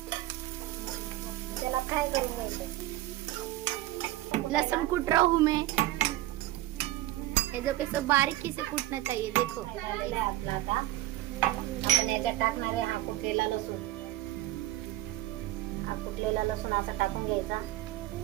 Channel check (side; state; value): left; quieter; 15.9 dB